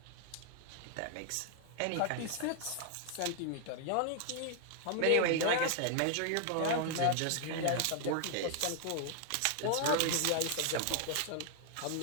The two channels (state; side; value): different; both; correlation 0.00